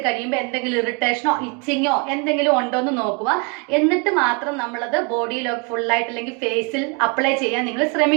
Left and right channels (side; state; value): left; quieter; 32.5 dB